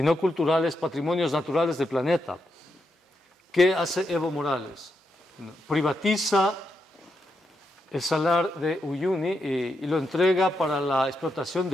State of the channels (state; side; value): normal; both; correlation 0.83